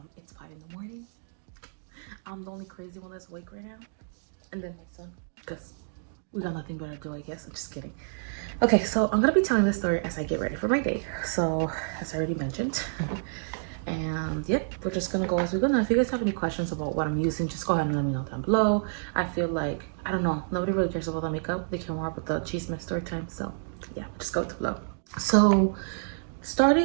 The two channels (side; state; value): left; silent; digital silence